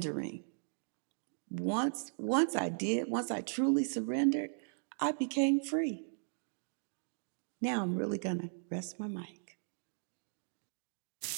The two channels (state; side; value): silent; left; digital silence